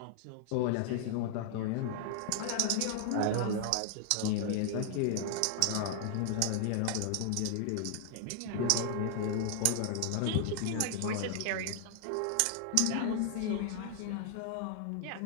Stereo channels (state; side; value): different; both; correlation 0.00